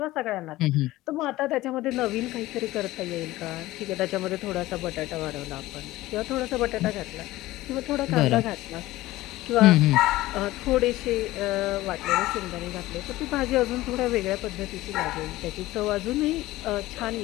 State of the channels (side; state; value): right; quieter; 17.3 dB